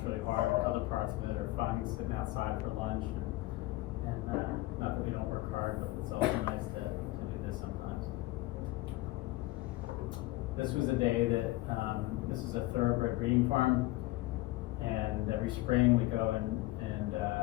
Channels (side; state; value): right; quieter; 18.8 dB